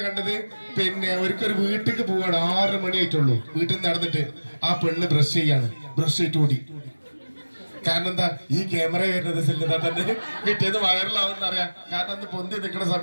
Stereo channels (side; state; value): both; inverted; correlation -1.00